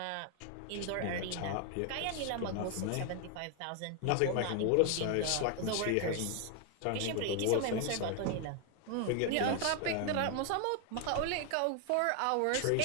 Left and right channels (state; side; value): different; both; correlation 0.00